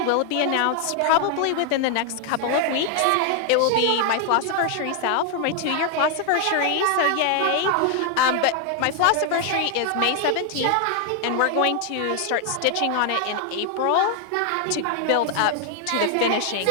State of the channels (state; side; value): different; both; correlation 0.00